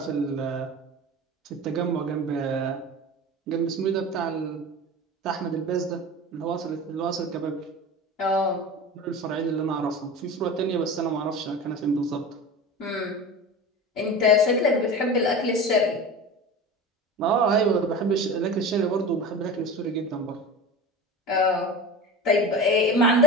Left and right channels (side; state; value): both; normal; correlation 0.31